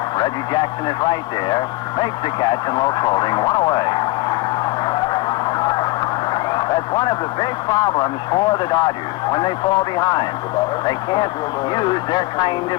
Reggie Jackson is right there. Makes the catch, and Lopes holding 1 away. That's one of the big problems for the Dodgers when they fall behind. They can't use their kind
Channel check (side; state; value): right; quieter; 20.7 dB